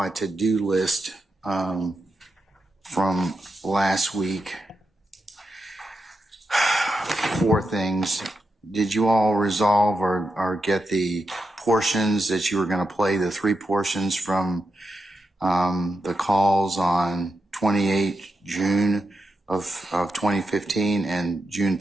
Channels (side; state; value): both; normal; correlation 0.87